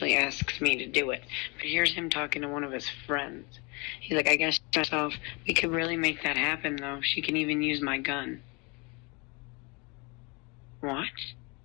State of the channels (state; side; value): quieter; right; 29.8 dB